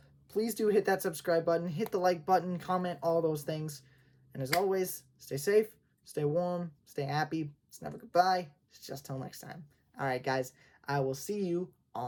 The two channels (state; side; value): identical; both; correlation 1.00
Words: please do hit that subscribe button, hit the like button, comment, all those things. And as always, stay safe, stay warm, stay happy. It's never goodbye. It's just till next time. All right, guys, I will see you